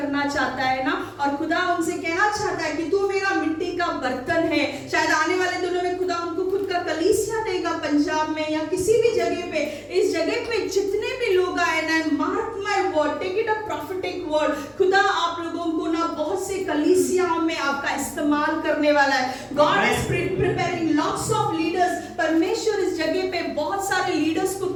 चाहता है ना। और खुदा उनसे कहना चाहता है कि तू मेरा मिट्टी का बर्तन है। शायद आने वाले दिनों में खुदा उनको खुद का कलीसिया देगा पंजाब में या किसी भी जगह पे। इस जगह पे जितने भी लोग आए ना, mark my word, take it a prophetic word, खुदा आप लोगों को ना बहुत से कलीसियाओं में आपका इस्तेमाल करने वाला है। God is preparing lots of leaders. परमेश्वर इस जगह पे बहुत सारे लीडर्स को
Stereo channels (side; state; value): both; identical; correlation 1.00